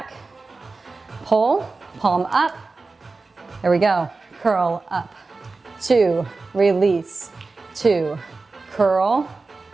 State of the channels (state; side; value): quieter; left; 3.8 dB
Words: Pull. Palm up. There we go. Curl up. 2. Release. 2. Curl.